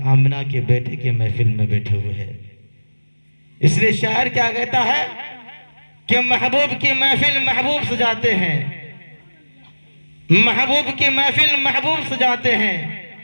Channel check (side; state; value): both; inverted; correlation -1.00